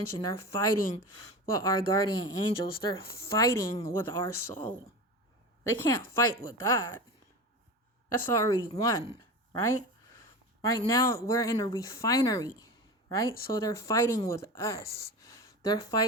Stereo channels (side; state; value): both; normal; correlation 0.29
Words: They're fighting with our guardian angels. They're fighting with our soul. They can't fight with God. That's already won, right? Right now, we're in a refinery, right? So they're fighting with us. They're